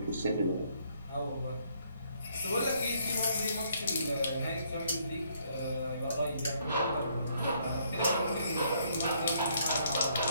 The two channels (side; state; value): both; inverted; correlation -0.68